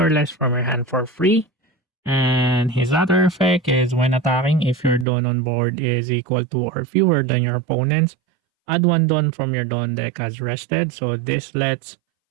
less from your hand for free. And his other effect is when attacking, if your Dawn on board is equal to or fewer than your opponent's, add one Dawn from your Dawn deck as rested. So this lets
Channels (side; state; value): left; drops out; at 5.1 s